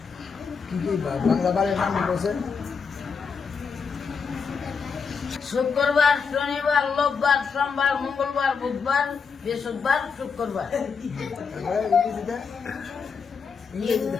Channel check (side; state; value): right; quieter; 5.7 dB